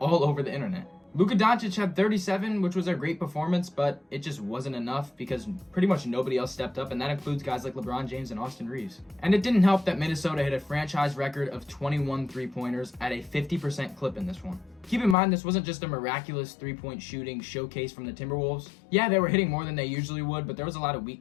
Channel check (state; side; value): drops out; right; at 15.2 s